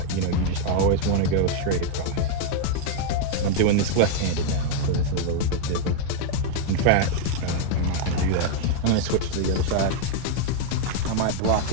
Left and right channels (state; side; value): different; both; correlation 0.00